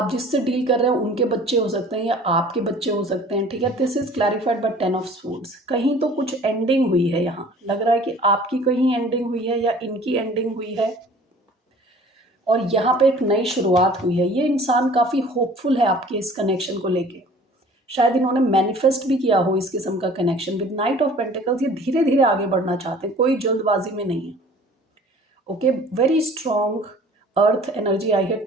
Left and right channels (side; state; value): both; normal; correlation 0.48